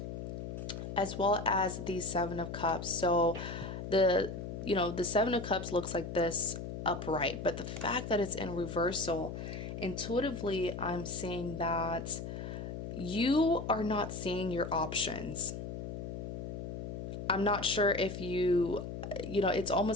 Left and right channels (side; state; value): left; noise; hum, 7 dB below the sound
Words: As well as the Seven of Cups. So the Seven of Cups looks like this upright, but the fact that it's in reversal, intuitively I'm seeing that you are not seeing your options. I'm not sure if it's